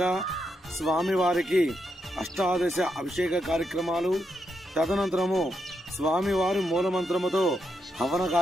స్వామివారికి అష్టాదశ అభిషేక కార్యక్రమాలు, తదనంతరము స్వామివారి మూలమంత్రముతో హవన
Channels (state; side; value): normal; both; correlation 0.82